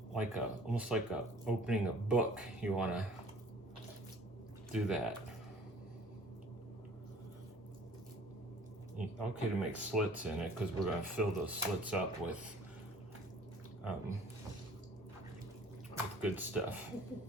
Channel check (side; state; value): both; normal; correlation 0.51